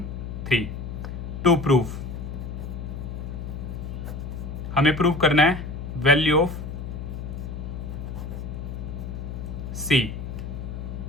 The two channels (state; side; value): noise; left; hum, 6 dB below the sound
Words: To prove हमें प्रूव करना है वैल्यू ऑफ सी,